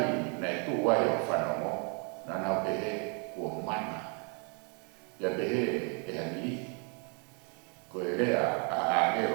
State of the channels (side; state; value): left; quieter; 37.6 dB